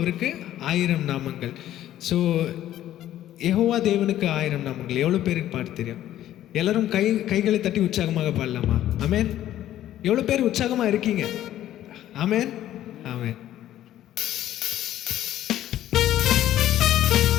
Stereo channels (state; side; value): quieter; right; 12.7 dB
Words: ஆயிரம் நாமங்கள். ஸோ யெகோவா தேவனுக்கு ஆயிரம் நாமங்கள். எவ்வளோ பேருக்கு பாட்டு தெரியும்? எல்லாரும் கைகளை தட்டி உற்சாகமாக பாடலாமா? ஆமென். எவ்வளோ பேர் உற்சாகமாக இருக்கீங்க? ஆமென், ஆமென்.